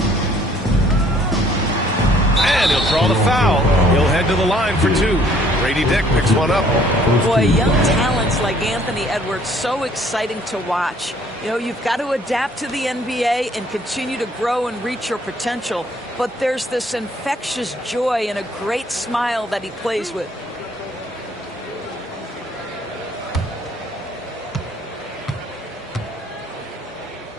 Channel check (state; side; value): normal; both; correlation 0.60